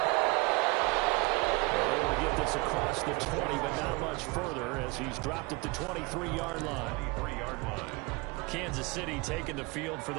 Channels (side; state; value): left; quieter; 25.2 dB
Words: They're able to get this across the 20, but not much further as he's dropped at the 23-yard line. Kansas City taking the field for